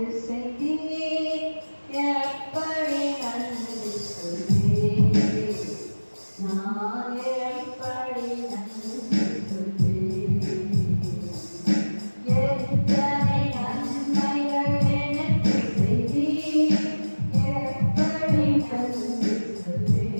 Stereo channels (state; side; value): inverted; both; correlation -1.00